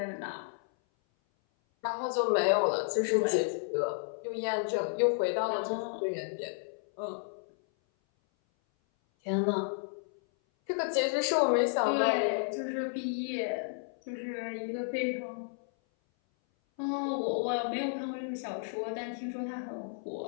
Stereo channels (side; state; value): right; silent; 56 dB below the other